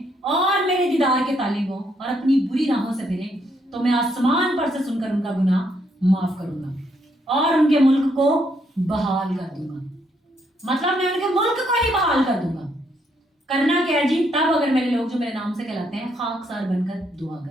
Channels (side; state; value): both; normal; correlation 0.74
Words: اور میرے دیدار کے طالب ہوں اور اپنی بری راہوں سے پھریں تو میں آسمان پر سے سن کر ان کا گناہ معاف کروں گا اور ان کے ملک کو بحال کر دوں گا. مطلب میں ان کے ملک کو ہی بحال کر دوں گا. کرنا کیا ہے جی؟ تب اگر میرے لوگ جو میرے نام سے کہلاتے ہیں خاکسار بن کر دعا